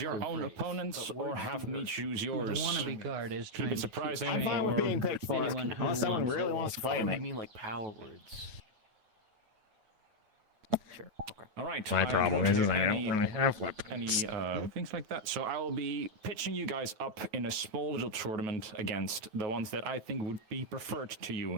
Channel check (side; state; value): left; late; 9.2 ms